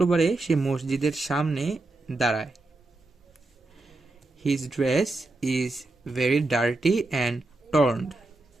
সে মসজিদের সামনে দাঁড়ায়। His dress is very dirty and torned.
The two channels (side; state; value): left; quieter; 3.0 dB